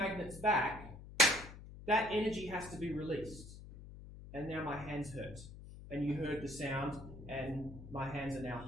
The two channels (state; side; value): noise; left; hum, 14 dB below the sound